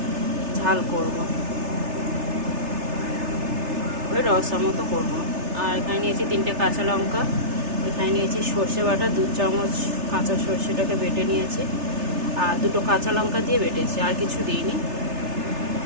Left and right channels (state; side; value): late; left; 3.3 ms